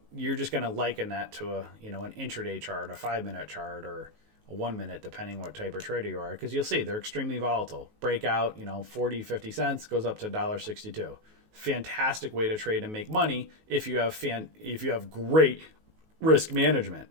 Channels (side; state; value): left; late; 19 ms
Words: just going to liken that to an intraday chart, a 5-minute chart, or a 1 minute, depending what type of trader you are, because you'll see they're extremely volatile. Breakout, 40, 50 cents goes up to $1.62. Fantastic way to trade and make money if you have great risk management.